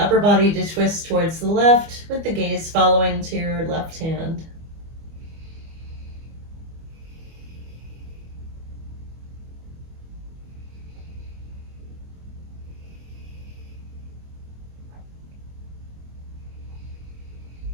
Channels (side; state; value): left; late; 25 ms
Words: body to twist towards the left with the gaze following to your left hand.